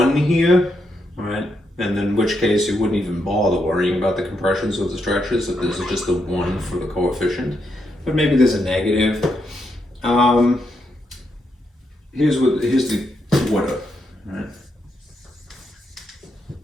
here, right? And then in which case you wouldn't even bother worrying about the compressions or the stretches if this is just a 1 for the coefficient. But maybe there's a negative. Here's the order, right?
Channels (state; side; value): normal; both; correlation 0.81